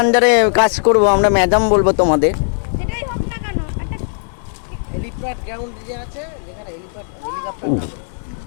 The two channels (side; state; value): right; silent; digital silence